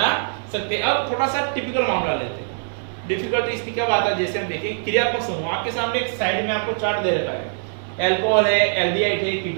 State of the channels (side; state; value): left; silent; digital silence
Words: सकते हैं। अब थोड़ा सा टिपिकल मामला लेते हैं। डिफिकल्टी इसकी क्या बात है, जैसे हम देखें क्रियात्मक समूह, आपके सामने एक साइड में आपको चार्ट दे रखा है, अल्कोहल है, एल्डिहाइड है,